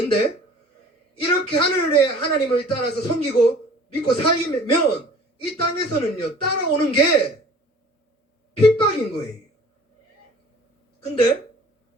이렇게 하늘의 하나님을 따라서 섬기고 믿고 살면 이 땅에서는요 따라오는 게 핍박인 거예요. 근데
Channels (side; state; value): both; normal; correlation 0.49